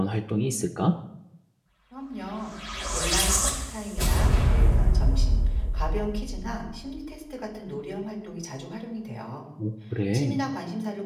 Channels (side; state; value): both; identical; correlation 1.00